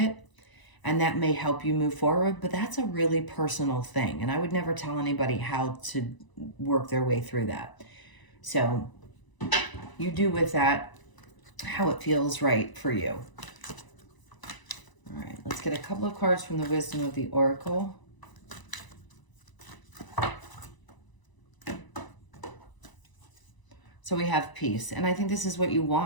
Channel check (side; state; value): right; late; 1.0 ms